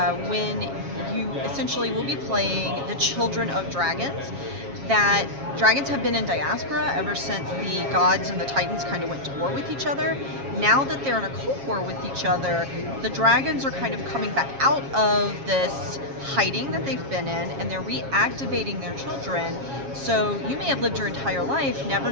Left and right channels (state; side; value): late; left; 7.3 ms